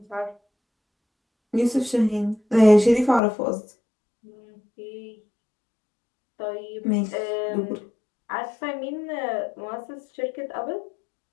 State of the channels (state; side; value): drops out; right; at 3.2 s